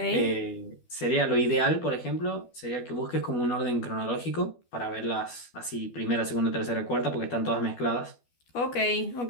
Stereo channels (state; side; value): late; right; 12 ms